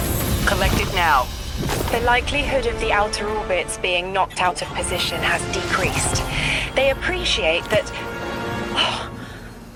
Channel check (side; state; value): both; identical; correlation 1.00